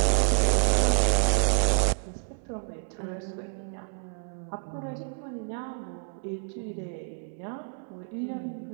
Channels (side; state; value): left; silent; 59 dB below the other